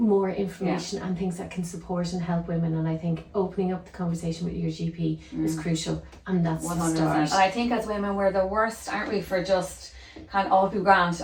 information and things that can support and help women, and I think opening up the conversation with your GP is crucial, and that's 100%. The start. And I think as women we're the worst, aren't we, for just kind of, all be grand,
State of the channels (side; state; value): both; identical; correlation 1.00